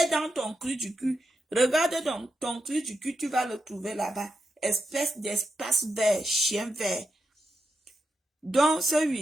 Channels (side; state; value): both; normal; correlation 0.86